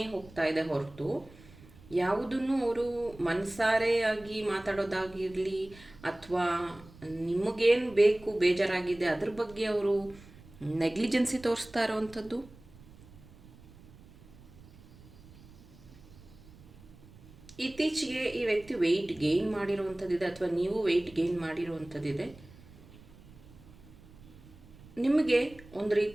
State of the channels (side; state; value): right; noise; rumble, 22 dB below the sound